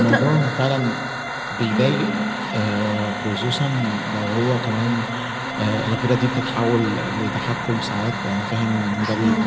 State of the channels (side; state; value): both; identical; correlation 1.00